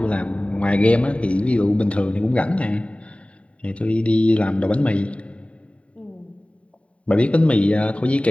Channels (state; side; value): late; right; 0.064 ms